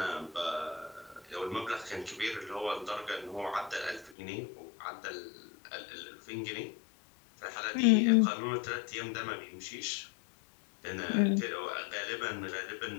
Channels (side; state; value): right; drops out; at 4.2 s